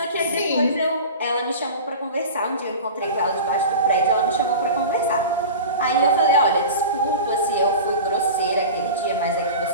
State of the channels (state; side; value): inverted; both; correlation -0.33